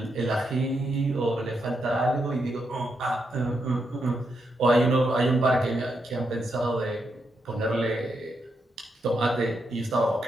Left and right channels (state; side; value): normal; both; correlation 0.82